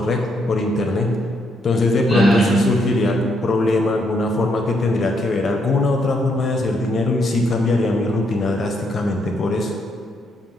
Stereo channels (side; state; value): both; normal; correlation 0.75